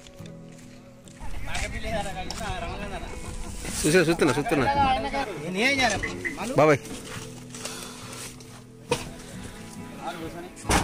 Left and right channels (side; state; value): both; identical; correlation 1.00